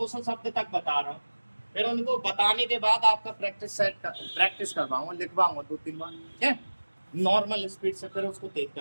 शब्द तक बता रहा हूँ, फिर उनको बताने के बाद आपका प्रैक्टिस करवाऊंगा, लिखवाऊंगा 2-3 बार, ठीक है, नॉर्मल स्पीड से, फिर उसको तेज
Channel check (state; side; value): inverted; both; correlation -1.00